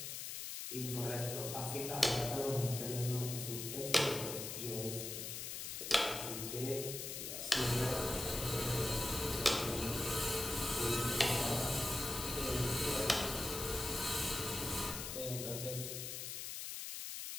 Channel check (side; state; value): left; noise; hiss, 5 dB below the sound